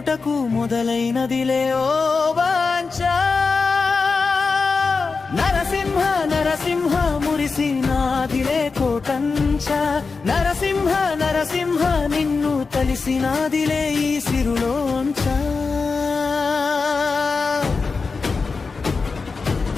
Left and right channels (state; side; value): quieter; right; 4.5 dB